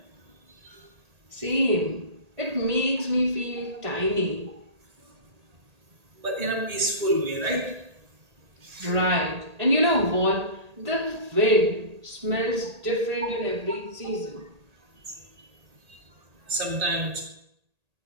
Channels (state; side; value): late; left; 1.8 ms